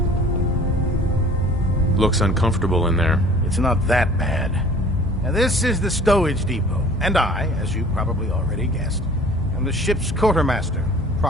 Looks uncomfortable in there. It's not that bad. Now, this is the stowage depot, and I, as you probably already guessed, am the ship's quartermaster,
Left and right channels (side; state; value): both; normal; correlation 0.48